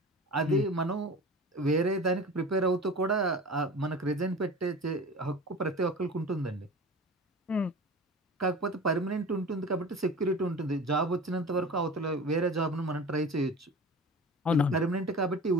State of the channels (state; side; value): normal; both; correlation 0.36